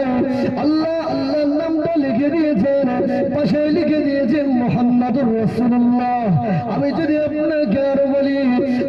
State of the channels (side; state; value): right; noise; hum, 24 dB below the sound